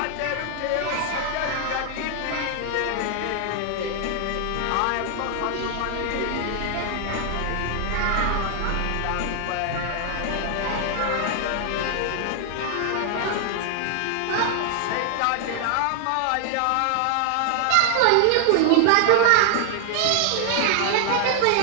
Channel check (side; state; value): both; different; correlation 0.00